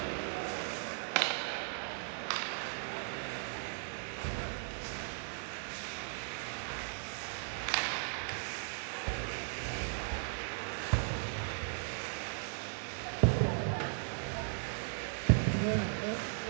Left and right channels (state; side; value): silent; left; 53 dB below the other